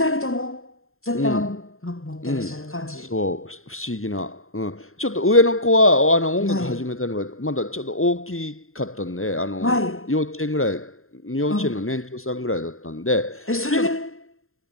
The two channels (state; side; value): late; right; 0.61 ms